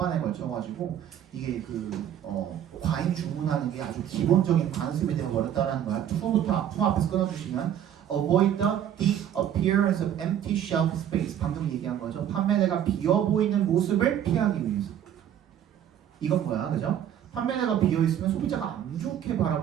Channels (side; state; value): left; quieter; 10.2 dB